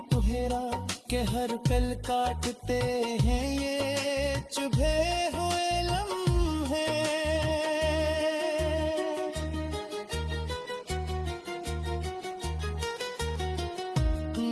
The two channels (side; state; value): both; identical; correlation 1.00